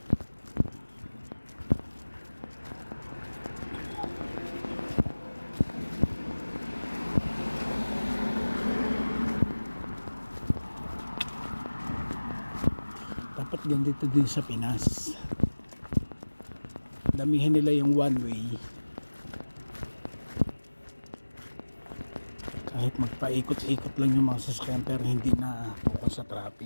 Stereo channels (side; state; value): both; inverted; correlation -1.00